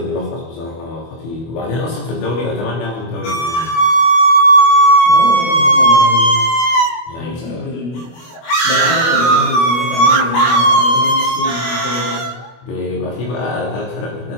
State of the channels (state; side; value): late; right; 24 ms